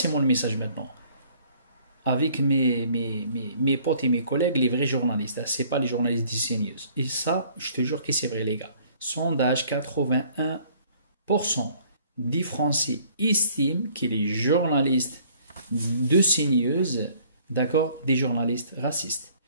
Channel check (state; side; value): inverted; both; correlation -0.58